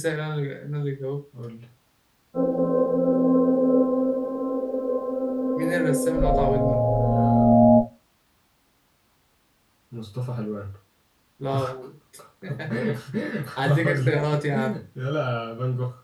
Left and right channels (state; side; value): identical; both; correlation 1.00